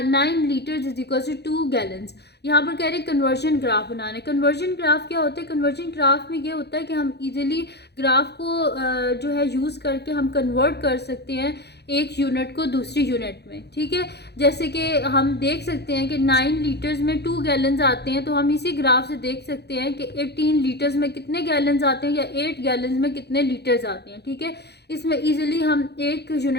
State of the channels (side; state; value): right; late; 0.48 ms